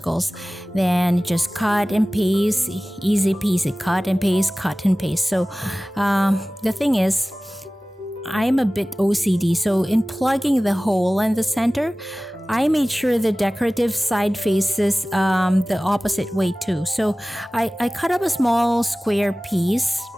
Then just cut and paste, easy peasy, cut and paste, cut and paste. So the thing is, I'm a bit OCD. So in plugging the hole in the center, I made sure the decorative side faces the opposite way too. So I cut up a small square piece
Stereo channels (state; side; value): normal; both; correlation 0.97